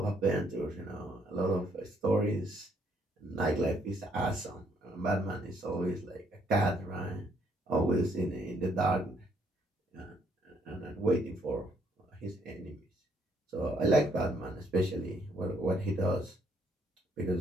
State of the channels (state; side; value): normal; both; correlation 0.69